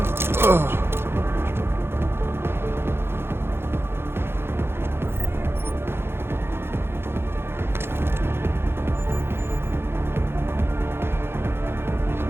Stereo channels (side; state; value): left; late; 0.11 ms